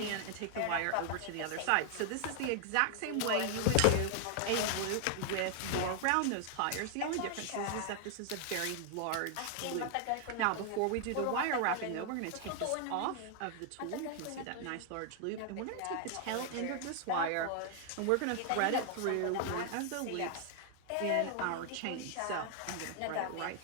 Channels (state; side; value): different; both; correlation 0.00